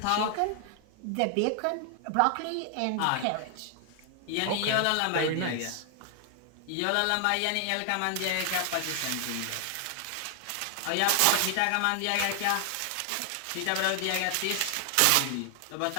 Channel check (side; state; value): both; different; correlation 0.00